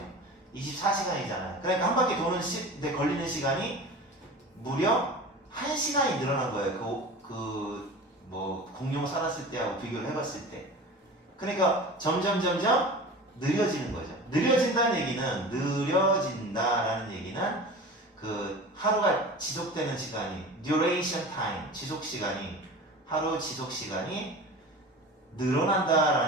24시간이잖아요. 그러니까 한 바퀴 도는 데 걸리는 시간이 무려 1시간이 늘어난 거예요. 공룡 살았을 때하고 비교를 해봤을 때. 그러니까 점점 느려지는 거죠. 느려진다라는 얘기는 그 하루가 지속되는 시간이 duration time 지속 시간이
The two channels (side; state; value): both; normal; correlation 0.35